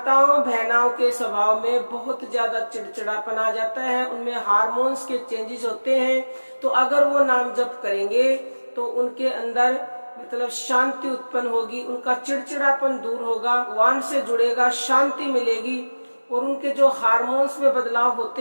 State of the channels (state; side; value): inverted; both; correlation -1.00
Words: बहनाओं के स्वभाव में बहुत ज्यादा चिड़चिड़ापन आ जाता है, उनमें हार्मोन्स के चेंजेस होते हैं। तो अगर वो नाम जप करेंगे तो उनके अंदर मतलब शांति उत्पन्न होगी, उनका चिड़चिड़ापन दूर होगा, भगवान से जुड़ेगा, शांति मिलेगी और उनके जो हार्मोन्स में बदलाव होते